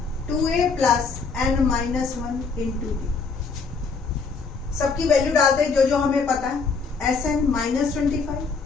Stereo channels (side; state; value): right; quieter; 4.8 dB